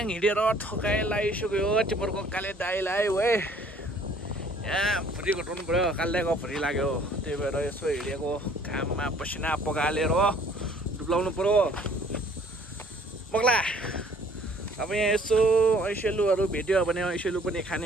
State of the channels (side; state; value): both; normal; correlation 0.57